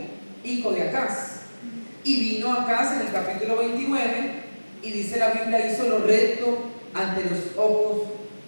de Acaz. Y vino Acaz en el capítulo 29, y dice la Biblia, hizo lo recto ante los ojos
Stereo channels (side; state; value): both; inverted; correlation -1.00